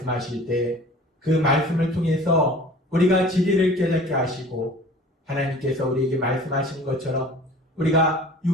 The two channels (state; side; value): normal; both; correlation 0.45